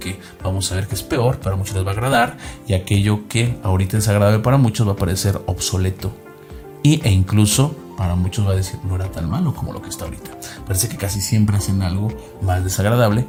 vamos a ver que es peor, para muchos les va a agradar, y aquello que ahorita es agradable para muchos va a parecer obsoleto e incluso para muchos va a decir no era tan malo como lo que está ahorita. Parece que casi siempre hacen algo más desagradable,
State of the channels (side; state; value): both; identical; correlation 1.00